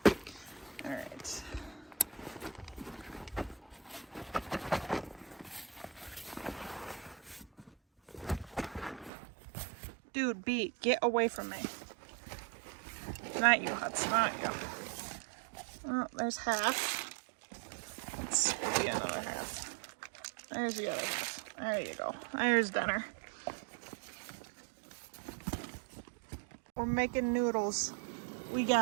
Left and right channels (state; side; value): drops out; left; at 9.1 s